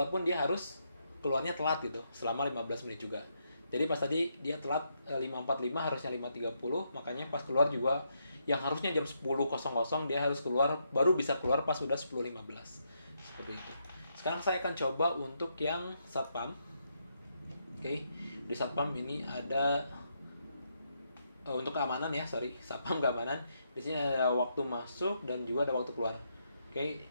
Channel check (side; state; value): both; inverted; correlation -0.79